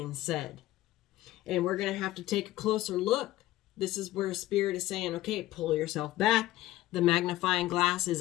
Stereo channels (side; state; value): right; quieter; 15.9 dB